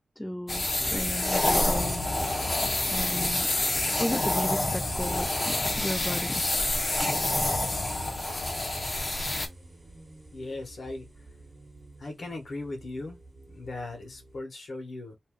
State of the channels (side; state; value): both; normal; correlation 0.96